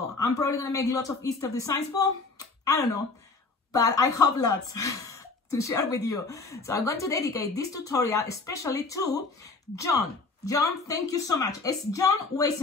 I'm probably gonna make lots of Easter designs. Well, I don't know, but I hope lots to share with you. So I'm going to dedicate this tutorial especially to John. John, thank you so much. It's John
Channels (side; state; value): right; quieter; 3.9 dB